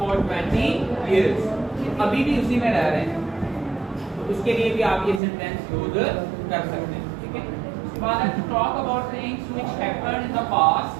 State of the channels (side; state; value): left; drops out; at 5.2 s